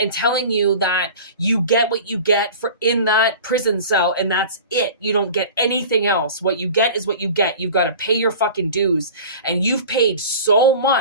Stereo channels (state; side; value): inverted; both; correlation -0.39